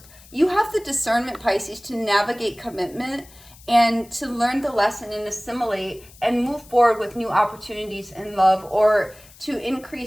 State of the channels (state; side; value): noise; left; hiss, 23 dB below the sound